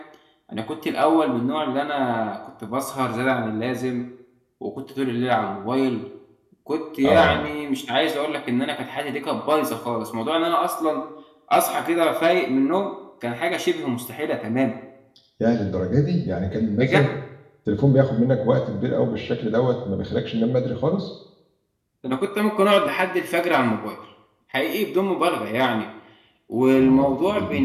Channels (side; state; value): both; identical; correlation 1.00